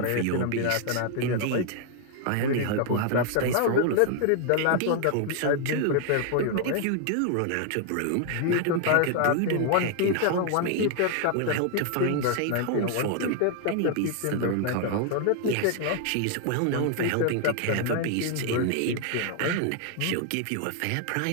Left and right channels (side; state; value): both; different; correlation 0.00